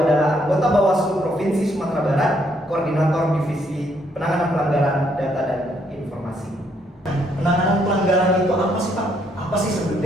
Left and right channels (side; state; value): both; normal; correlation 0.71